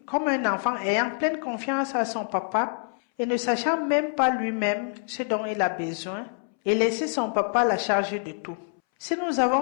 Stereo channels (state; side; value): silent; right; 60 dB below the other